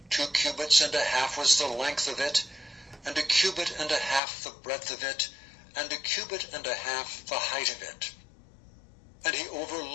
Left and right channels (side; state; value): right; drops out; at 4.2 s